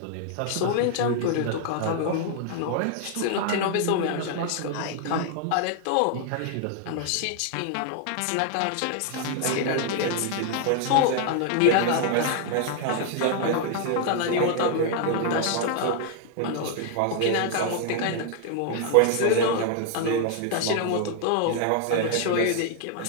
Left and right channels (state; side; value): different; both; correlation 0.00